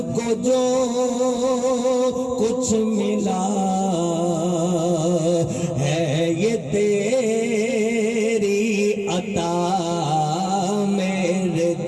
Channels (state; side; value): identical; both; correlation 1.00